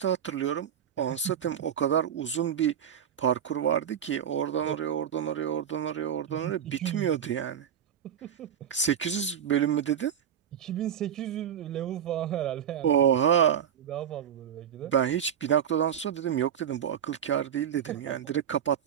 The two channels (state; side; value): quieter; left; 9.0 dB